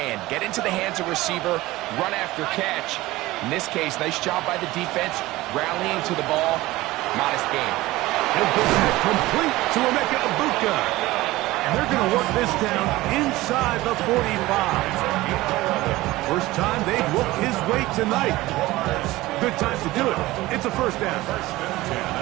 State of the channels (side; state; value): left; quieter; 18.4 dB